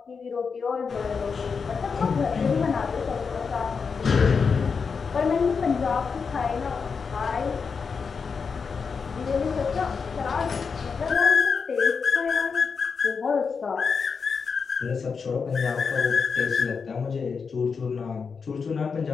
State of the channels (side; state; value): right; quieter; 5.5 dB